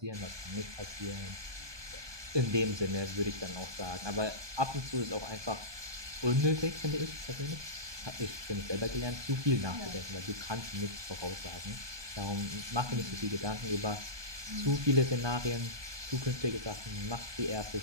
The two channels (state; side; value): late; left; 1.2 ms